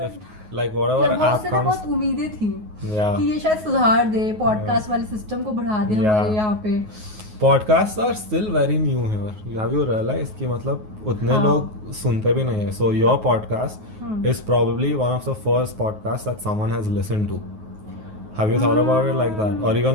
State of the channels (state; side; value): late; left; 9.4 ms